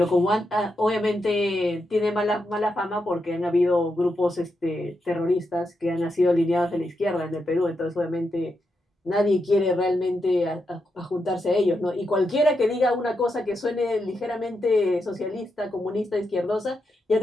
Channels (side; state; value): both; normal; correlation 0.84